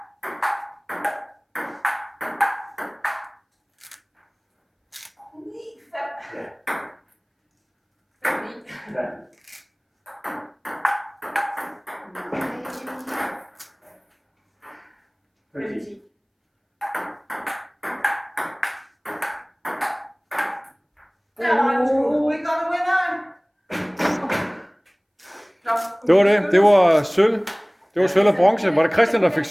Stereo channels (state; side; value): identical; both; correlation 1.00